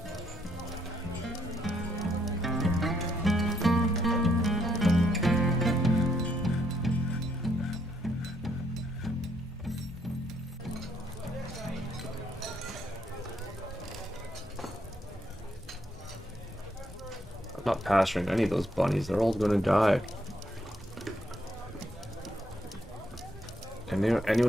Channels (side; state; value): both; normal; correlation 0.73